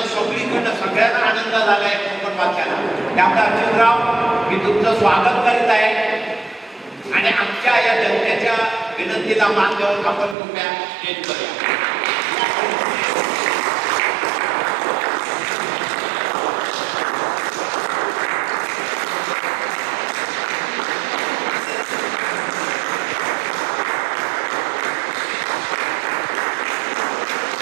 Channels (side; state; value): left; drops out; at 10.4 s